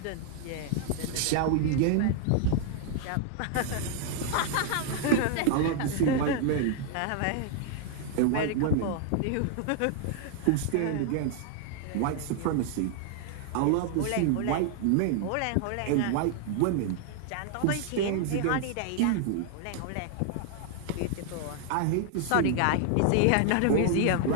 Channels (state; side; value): different; both; correlation 0.00